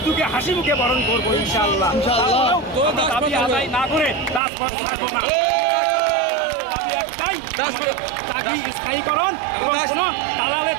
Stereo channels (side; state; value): left; drops out; at 4.4 s